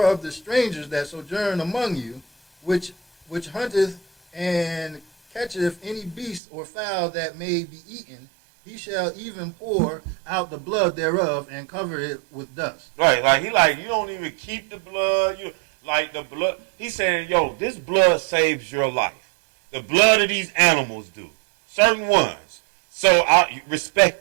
of the strangers that sojourn among you, which hunteth and catcheth any beast or fowl that may be eaten, he shall even pour out the blood thereof and cover it with dust. Right, like you don't even keep the blood. You like the blood. He's saying, yo, this blood saves your life. The blood of these animals do. Certain ones. So I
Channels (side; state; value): left; drops out; at 6.4 s